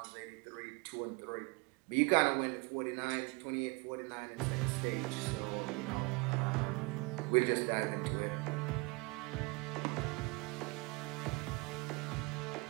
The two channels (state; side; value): quieter; left; 28.2 dB